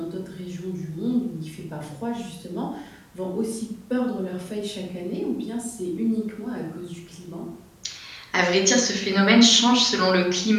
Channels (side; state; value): both; identical; correlation 1.00